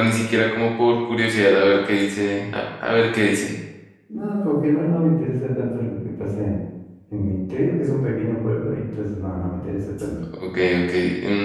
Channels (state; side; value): identical; both; correlation 1.00